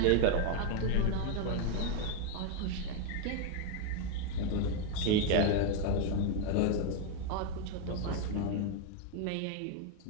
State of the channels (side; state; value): both; different; correlation 0.01